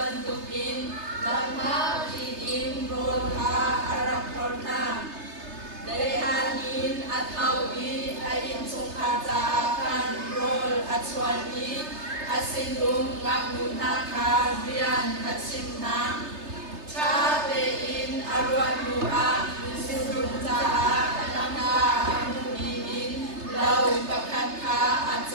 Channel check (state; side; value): late; left; 3.3 ms